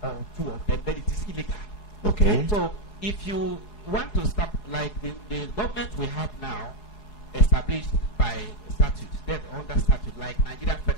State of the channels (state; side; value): late; right; 4.8 ms